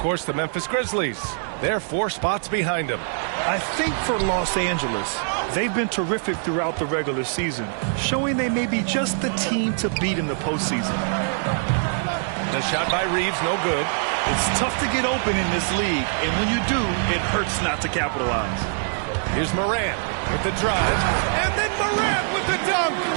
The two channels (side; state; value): left; silent; digital silence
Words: the Memphis Grizzlies. They're 4 spots behind them. I think for Los Angeles, they've been terrific throughout the regular season, showing they may be just the team to beat in the postseason. The shot by Reeves, no good. It's tough to get open in this league, and when you do, it hurts not to capitalize. Here's Morant with the drive, and then Morant with the dunk.